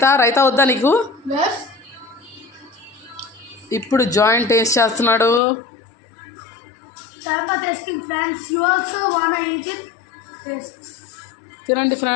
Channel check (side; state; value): right; drops out; at 5.4 s